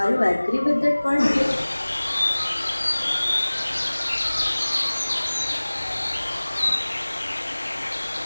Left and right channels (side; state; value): both; inverted; correlation -1.00